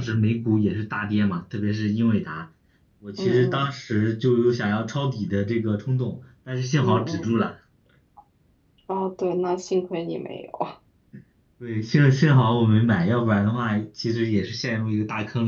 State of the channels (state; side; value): identical; both; correlation 1.00